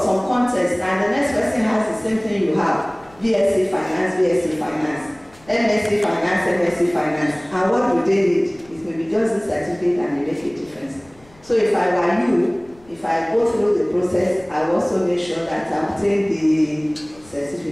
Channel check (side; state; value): left; noise; rumble, 28 dB below the sound